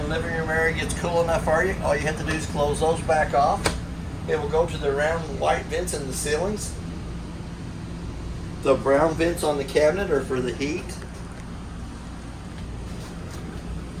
living room area gets cool enough for you, all you have to do is close those back off. It will go to the round white vents in the ceilings. The brown vents on the cabinet are for the heat.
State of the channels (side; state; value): both; identical; correlation 1.00